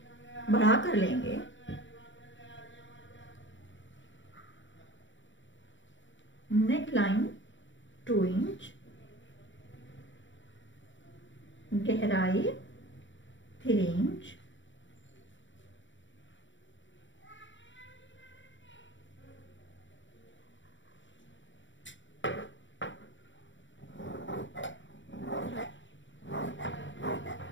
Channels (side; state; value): right; late; 0.55 ms